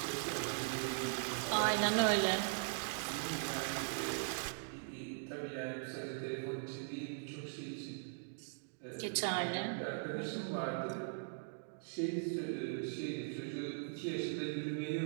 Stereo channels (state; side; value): silent; left; digital silence